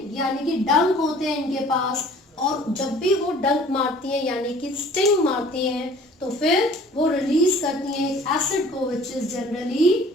यानी कि डंक होते हैं इनके पास, और जब भी वो डंक मारती हैं यानी कि स्टिंग मारती हैं तो फिर वो रिलीज करती हैं एक एसिड को which is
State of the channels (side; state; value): both; normal; correlation 0.51